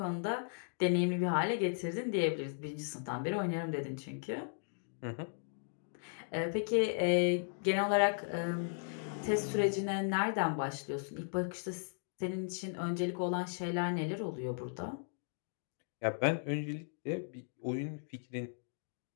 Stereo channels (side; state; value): right; silent; digital silence